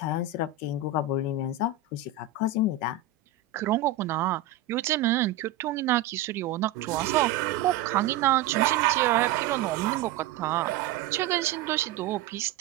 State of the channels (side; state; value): left; quieter; 7.4 dB